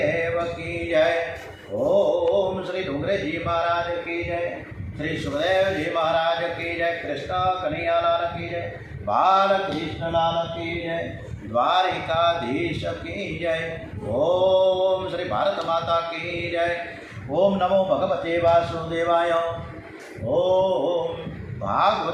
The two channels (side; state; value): both; identical; correlation 1.00